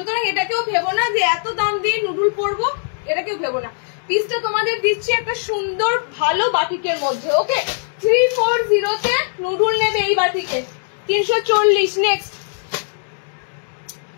এটাকেও ভেবো না যে এত দাম দিয়ে নুডুল পরবো, এটাকেও ভেবো না। পিসটা তোমাদের দিচ্ছি একটা সুন্দর ভালো বাটিকের মধ্যে। ওকে, 340-তে নুডুল নেবে এই বাটিকে 340। নেক্সট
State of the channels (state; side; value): silent; right; digital silence